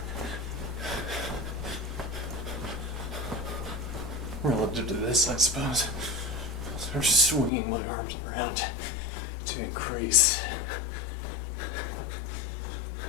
relative to this, I suppose. Sort of swinging my arms around to increase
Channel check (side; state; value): right; drops out; at 7.5 s